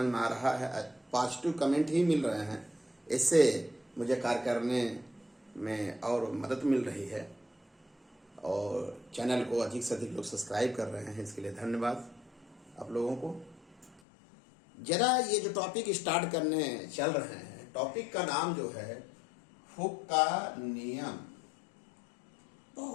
में आ रहा है, पॉजिटिव कमेंट ही मिल रहे हैं। इससे मुझे कार्य करने में और मदद मिल रही है और चैनल को अधिक से अधिक लोग सब्सक्राइब कर रहे हैं। इसके लिए धन्यवाद आप लोगों को। जरा ये जो टॉपिक स्टार्ट करने चल रहे हैं, टॉपिक का नाम जो है हुक का नियम।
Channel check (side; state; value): right; drops out; at 14.0 s